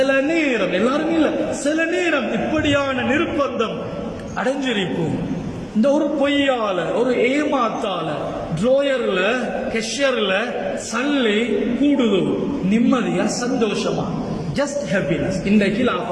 நேரம், எல்லாரும் இல்ல, சில நேரம் இப்படியான நிர்பந்தம் அடைஞ்சிருப்போம். இந்த ஒரு பொய்யால, ஒரு ஏமாத்தால ட்ரோயர்ல, கெஷர்ல சல்லி கூடுதோ, நிம்மதியா சந்தோஷமா, ஜஸ்ட் ஹாப்பினஸ், இன்றைக்கு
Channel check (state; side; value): identical; both; correlation 1.00